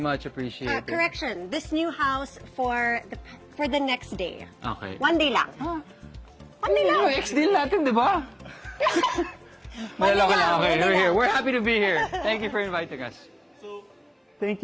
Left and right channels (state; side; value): identical; both; correlation 1.00